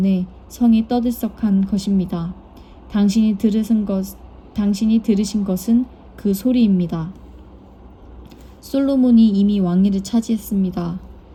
성이 떠들썩한 것입니다. 당신이 들으신 것은 그 소리입니다. 솔로몬이 이미 왕위를 차지했습니다.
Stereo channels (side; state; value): both; identical; correlation 1.00